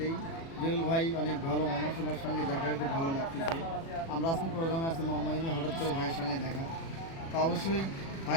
জুয়েল ভাই অনেক ভালো মানুষ, ওনার সঙ্গে দেখা হয়ে খুব ভালো লাগতেছে। আমরা আজকে প্রোগ্রামে আসছি মোহাম্মদিনী, হঠাৎ করে ভাইয়ের সঙ্গে দেখা। তো অবশ্যই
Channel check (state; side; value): late; right; 36 ms